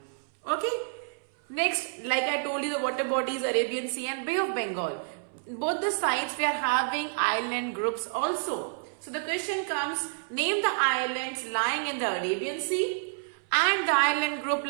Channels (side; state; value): left; silent; 59 dB below the other